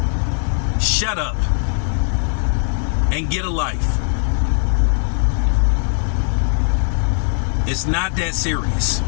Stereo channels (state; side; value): silent; right; 66 dB below the other